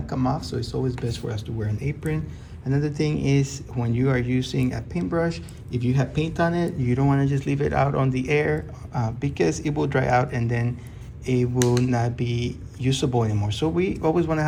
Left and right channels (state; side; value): identical; both; correlation 1.00